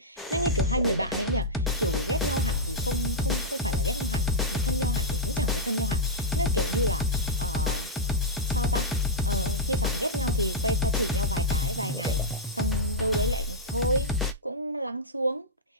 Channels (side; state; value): both; normal; correlation -0.07